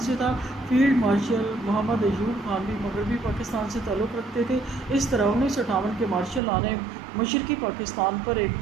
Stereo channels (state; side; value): drops out; left; at 6.4 s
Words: سے تھا۔ فیلڈ مارشل محمد ایوب خان بھی مغربی پاکستان سے تعلق رکھتے تھے۔ اس طرح 1958 کے مارشل لا نے مشرقی پاکستان پر ایک